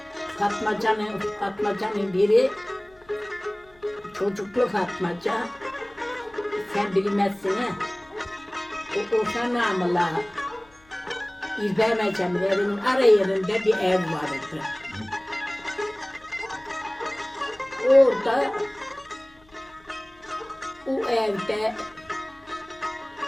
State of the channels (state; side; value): noise; left; hum, 29 dB below the sound